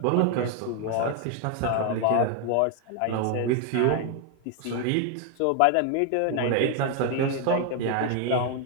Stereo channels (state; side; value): different; both; correlation 0.01